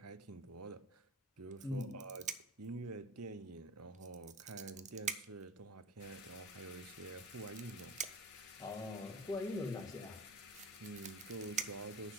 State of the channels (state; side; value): normal; both; correlation 0.34